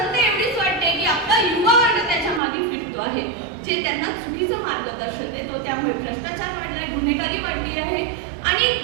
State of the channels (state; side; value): drops out; left; at 2.4 s